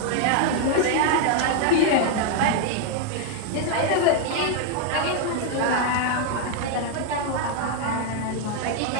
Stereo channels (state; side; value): different; both; correlation 0.00